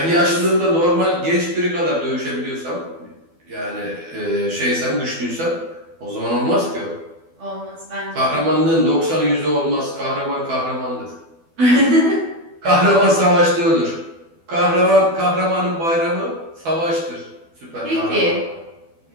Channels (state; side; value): late; left; 12 ms